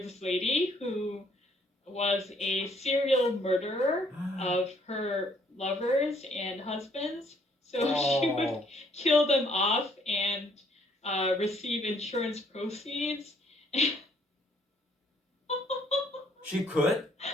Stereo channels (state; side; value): normal; both; correlation 0.65